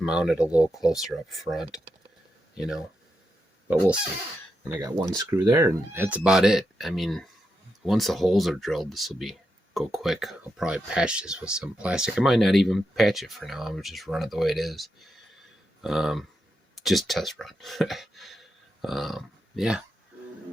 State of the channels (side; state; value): both; normal; correlation 0.85